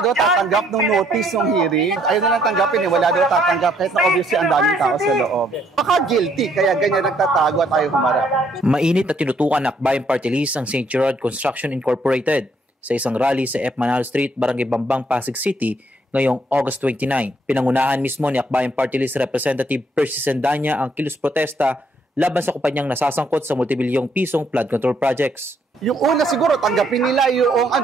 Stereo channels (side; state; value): both; normal; correlation 0.69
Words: daw tatanggap ng notice ng hearing? Ayaw na lang tanggapin eh, wala daw tatanggap kahit na obviously ang daming tao sa loob. Baka guilty, kaya ganyan nagtatago at ayaw humarap. Mainit na tinutukan ng Akbayan Party List ang St. Gerard Construction Incorporated sa isang rally sa F. Manalo Street, Barangay Bambang, Pasig City ngayong August 29. Pinangunahan mismo ni Akbayan Party List Representative Percy Sendanya ang kilos protesta laban sa kumpanyang nasasangkot sa multibilyong pisong flood control projects. Yung una siguro tanggapin nila